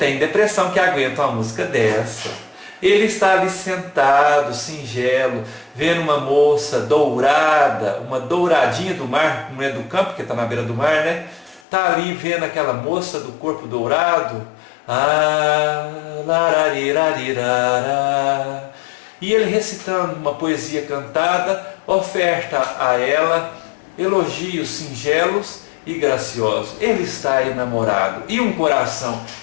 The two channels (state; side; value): drops out; right; at 11.6 s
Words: depressão que aguenta uma música dessa. Ele está ali sentado, singelo, vendo uma moça dourada, uma douradinha do mar, não é do campo, porque está na beira do mar, né? Está ali vendo aquela moça do corpo dourado. E ele recitando uma poesia cantada, oferta a ela elogios singelos e graciosos. Ele está enamorado. E um coração